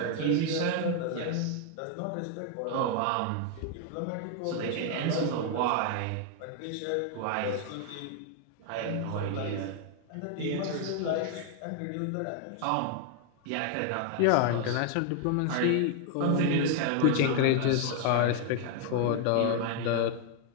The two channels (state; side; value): different; both; correlation 0.00